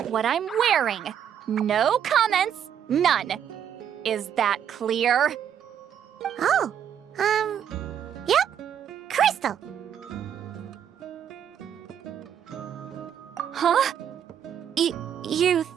what I'm wearing. No comments, none. Is that clear? Oh, yep. Crystal. Huh? You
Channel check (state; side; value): quieter; left; 8.9 dB